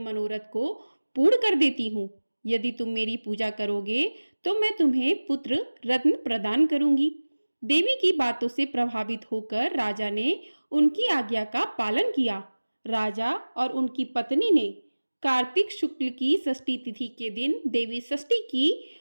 को पूर्ण कर देती हूँ। यदि तुम मेरी पूजा करोगे तो मैं तुम्हें पुत्र रत्न प्रदान करूंगी। देवी की बातों से प्रभावित होकर राजा ने उनकी आज्ञा का पालन किया। राजा और उनकी पत्नी ने कार्तिक शुक्ल की षष्ठी तिथि के दिन देवी षष्ठी की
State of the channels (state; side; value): inverted; both; correlation -1.00